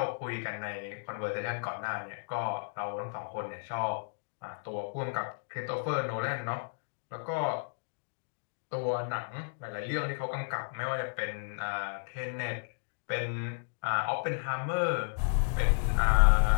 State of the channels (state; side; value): silent; right; digital silence